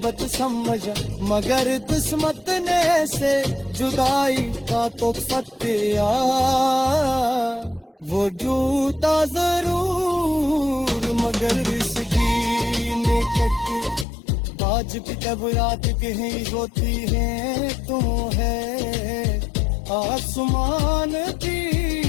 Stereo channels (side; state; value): right; drops out; at 14.1 s